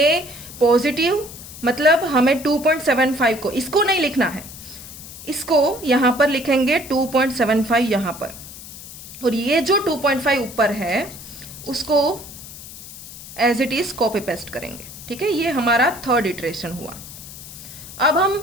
पॉजिटिव मतलब हमें 2.75 को, इसको नहीं लिखना है, इसको यहाँ पर लिखेंगे 2.75 यहाँ पर, और ये जो 2.5 ऊपर है उसको as it is copy paste करेंगे। ठीक है, ये हमारा थर्ड इटरेशन हुआ। अब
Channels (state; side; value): noise; left; hiss, 14 dB below the sound